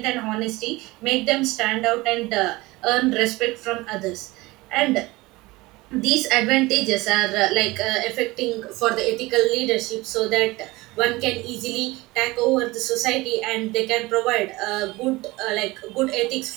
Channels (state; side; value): quieter; left; 21.2 dB